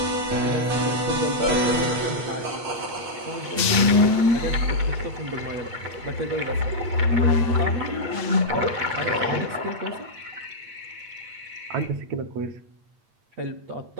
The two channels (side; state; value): left; late; 8.5 ms